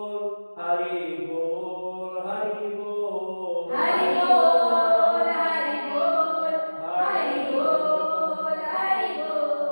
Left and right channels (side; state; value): both; inverted; correlation -1.00